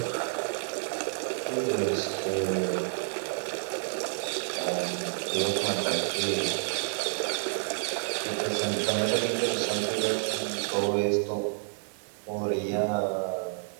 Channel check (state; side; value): silent; left; 58 dB below the other